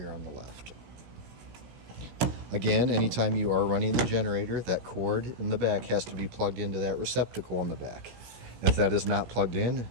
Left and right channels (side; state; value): left; late; 17 ms